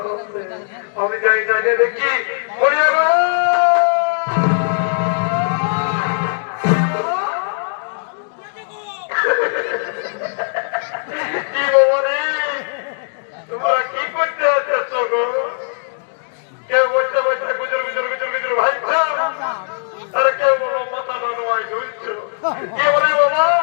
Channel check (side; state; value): right; silent; digital silence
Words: আমি যাই জানে দেখি কি বলি তোমরা কি করতে আছো গো? কেউ বসে বসে গুজর গুজর গুজর গুজর ভাইছ, আরে কেউ বলো মাথা বানোয়াই ঢুলছো। কি বলে বাবা